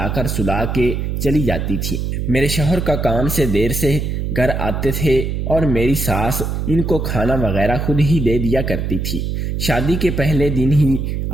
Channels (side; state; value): right; noise; hum, 2 dB below the sound